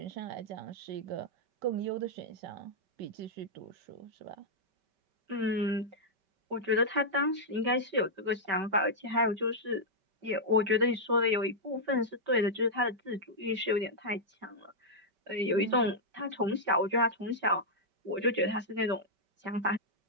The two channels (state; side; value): late; left; 5.2 ms